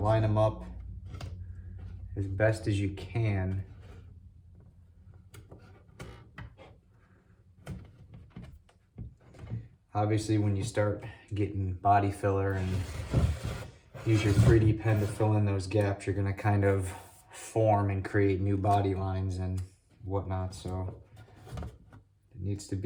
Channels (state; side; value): identical; both; correlation 1.00